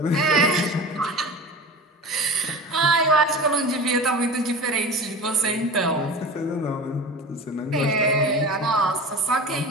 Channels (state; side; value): normal; both; correlation 0.33